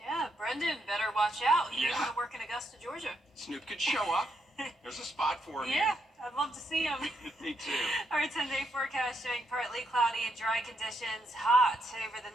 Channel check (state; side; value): normal; both; correlation 0.78